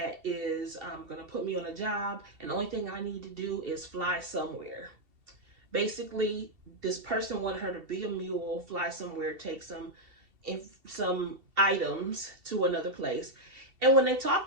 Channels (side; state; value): left; late; 2.7 ms